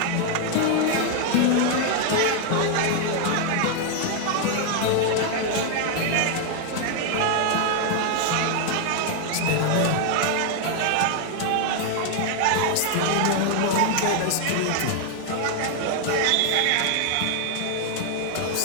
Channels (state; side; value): different; both; correlation 0.00